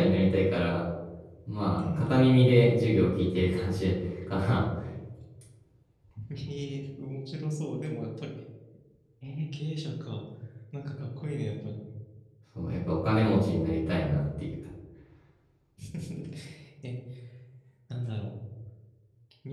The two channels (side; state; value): both; identical; correlation 1.00